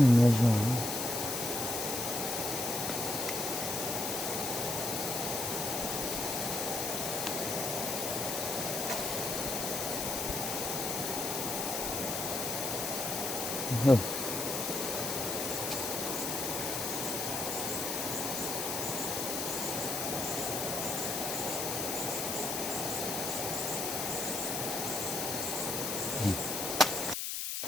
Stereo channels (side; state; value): left; noise; hiss, 1 dB below the sound